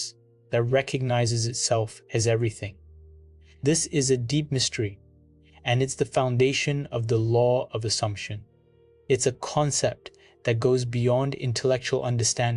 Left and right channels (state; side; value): identical; both; correlation 1.00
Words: that recognizes itself as everything. This is a deep mystery, and it's the foundation of the law of assumption. It's a concept that goes beyond intellectual